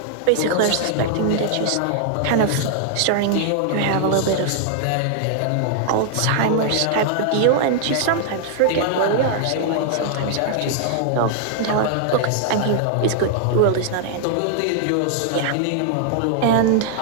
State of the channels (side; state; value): both; different; correlation -0.01